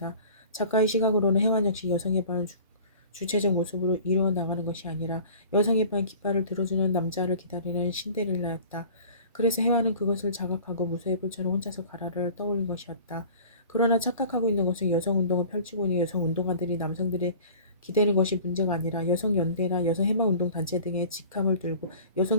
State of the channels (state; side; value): inverted; both; correlation -0.45